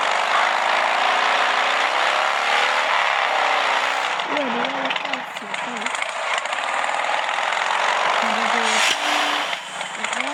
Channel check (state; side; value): identical; both; correlation 1.00